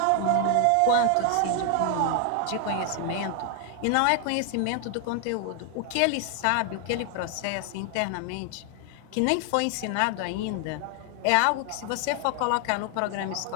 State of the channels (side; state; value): both; different; correlation 0.00